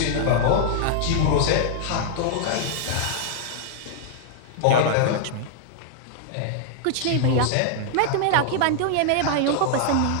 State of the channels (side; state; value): both; different; correlation 0.00